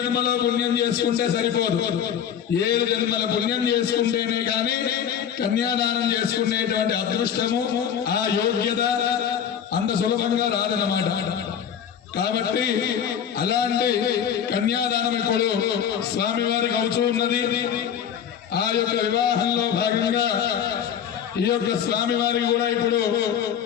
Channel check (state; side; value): quieter; right; 8.8 dB